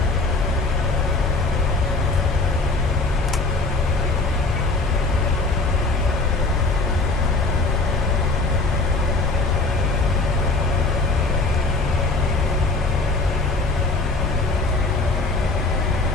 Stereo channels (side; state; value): right; quieter; 3.3 dB